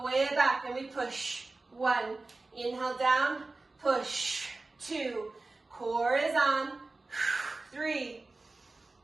way back, and we push. 1, inhale down, push. 2, core is on. 3,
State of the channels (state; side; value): quieter; left; 3.4 dB